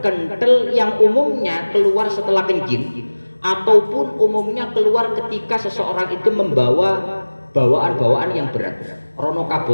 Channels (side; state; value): both; inverted; correlation -1.00